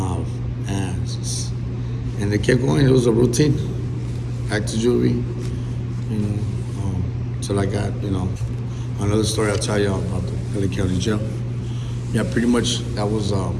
ass. And they kept going, it was a routine. Back to juvie, you know, till I got, you know, another story I'll tell you about the LA County Jail. Yeah, pretty much that was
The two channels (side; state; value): both; identical; correlation 1.00